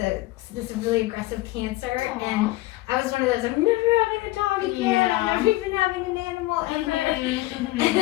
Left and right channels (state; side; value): quieter; right; 18.9 dB